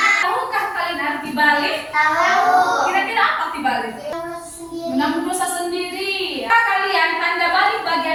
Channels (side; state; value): both; identical; correlation 1.00